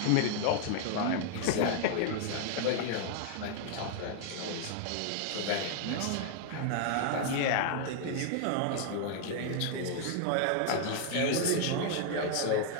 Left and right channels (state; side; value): different; both; correlation 0.00